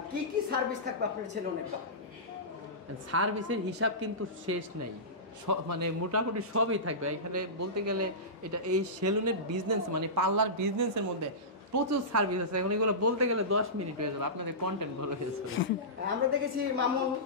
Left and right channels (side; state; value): both; normal; correlation -0.18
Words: কি কি সার্ভিস থাকবে আপনার সেলুনে? সার্ভিসের হিসাব কিন্তু শেষ নাই, মানে মোটামুটি সবই থাকবে এখানে। বলতে গেলে এটা এই সেলুনের বিজনেস মানে পার্লার বিজনেসের মধ্যে প্রচুর সার্ভিস আছে, এখন এগুলো বলতে গেলে 10 মিনিট হয়ে যাবে, আপনাদের কন্টেন্ট ভালো হয়েছে। আমরা দেখেছি মামুন